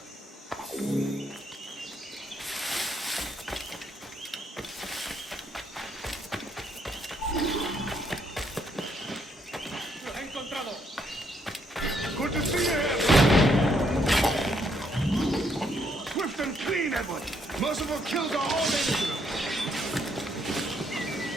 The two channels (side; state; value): both; normal; correlation 0.73